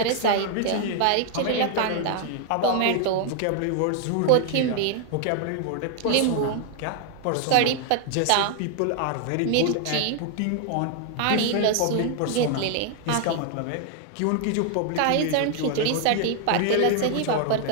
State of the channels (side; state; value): both; different; correlation 0.00